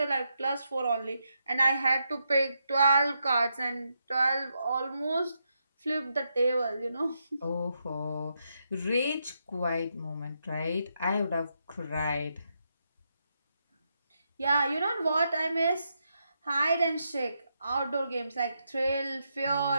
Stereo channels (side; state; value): both; inverted; correlation -0.82